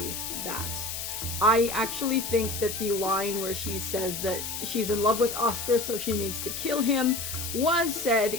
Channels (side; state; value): left; noise; hiss, 5 dB below the sound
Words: that. I actually think that the line where she says that she's in love with Oscar so she needs to kill him was said